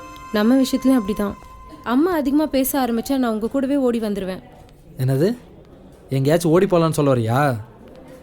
நம்ம விஷயத்துலையும் அப்படி தான். அம்மா அதிகமாக பேச ஆரம்பித்தா நான் உங்கள் கூடவே ஓடி வந்துடுவேன். என்னது? எங்கேயாச்சும் ஓடி போகலான்னு சொல்ல வரியா?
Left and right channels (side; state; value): both; identical; correlation 1.00